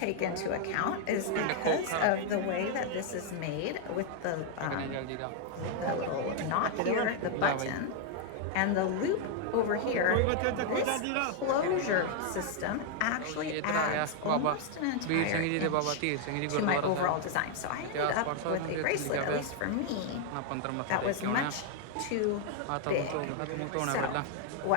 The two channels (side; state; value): both; different; correlation 0.00